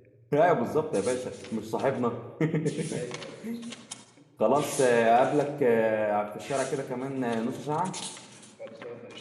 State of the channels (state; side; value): identical; both; correlation 1.00